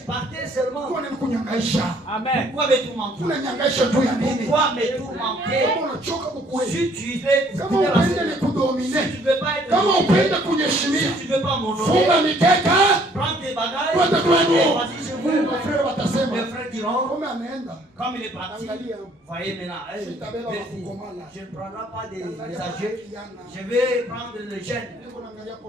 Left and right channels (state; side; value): normal; both; correlation 0.62